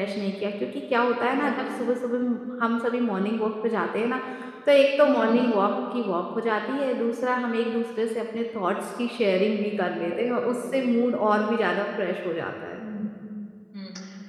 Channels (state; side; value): identical; both; correlation 1.00